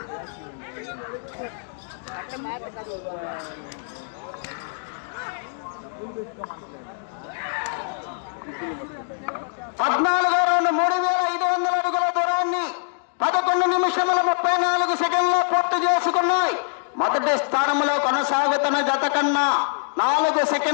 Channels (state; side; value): silent; right; digital silence